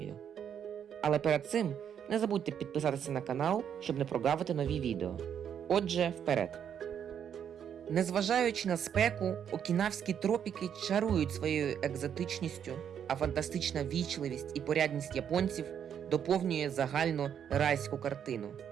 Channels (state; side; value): quieter; left; 8.6 dB